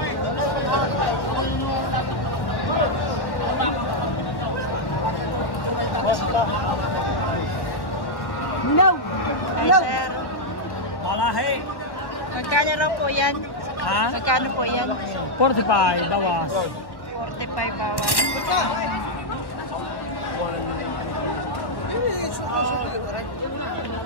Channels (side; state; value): right; late; 1.1 ms